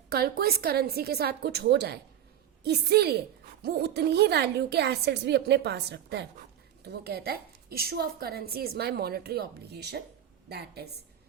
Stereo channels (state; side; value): quieter; left; 10.4 dB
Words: कल को इस करेंसी के साथ कुछ हो जाए, इसीलिए वो उतनी ही वैल्यू के एसेट्स भी अपने पास रखता है। तो वो कहता है issue of currency is my monetary obligation, that is